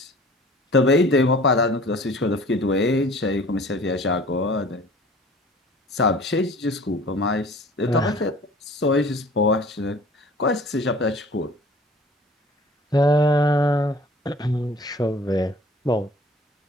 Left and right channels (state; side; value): normal; both; correlation 0.48